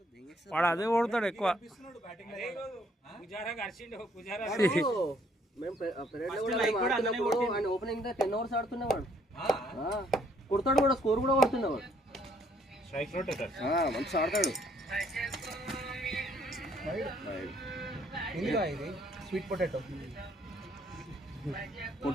వాడు అదే ఓడతాడు ఎక్కువ. Opening 10 overs ఆడుతున్నవాడు. కొడతాడు కూడా, స్కోర్ కూడా కొడుతున్నవాడు. మంచి ఆడతాడు. Sweet potato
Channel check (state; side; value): normal; both; correlation 0.66